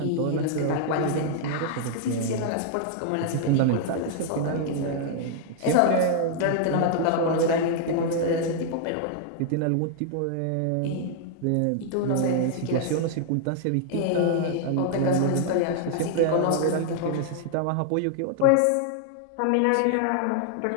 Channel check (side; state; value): both; different; correlation -0.01